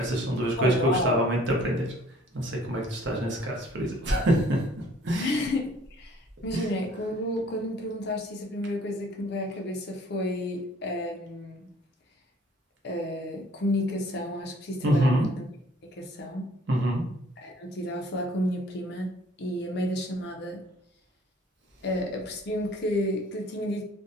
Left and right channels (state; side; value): normal; both; correlation 0.56